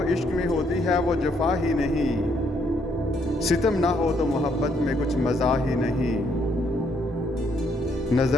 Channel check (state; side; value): normal; both; correlation 0.71